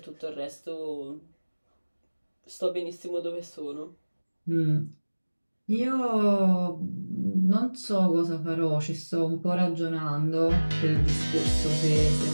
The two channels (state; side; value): inverted; both; correlation -1.00